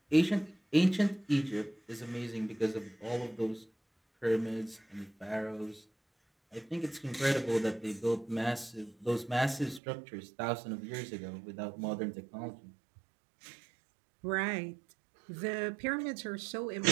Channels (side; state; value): left; drops out; at 9.8 s